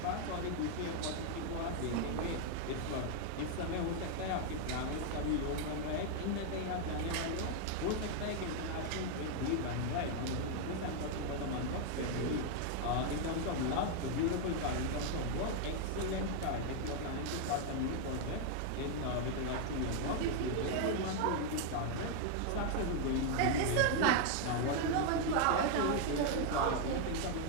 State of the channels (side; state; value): both; different; correlation 0.00